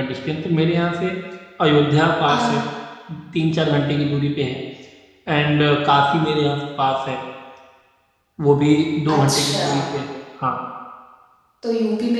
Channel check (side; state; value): both; identical; correlation 1.00